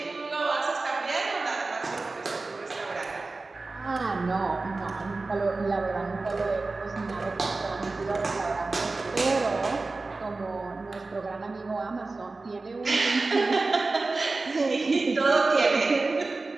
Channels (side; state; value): left; quieter; 3.5 dB